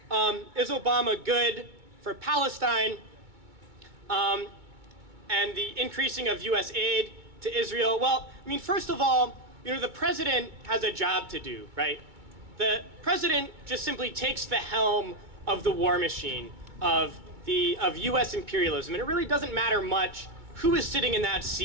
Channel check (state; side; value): late; left; 2.2 ms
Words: is Obama good for Palestine and the increasing of US aid to Israel? Well, I mean, first of all, the president has a job to do, right? The president just simply takes the helm of the war machine of US imperialism, and it really doesn't matter much who is sitting in that